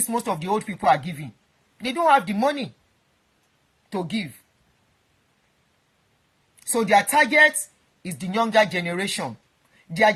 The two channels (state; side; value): identical; both; correlation 1.00